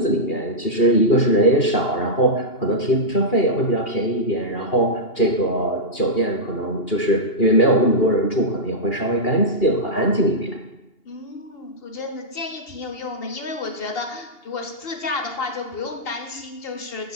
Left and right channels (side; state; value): right; late; 2.8 ms